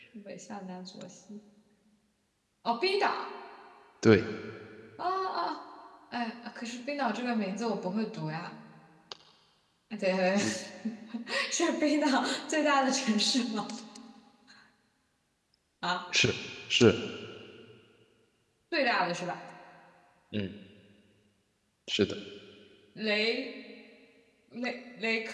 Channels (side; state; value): both; identical; correlation 1.00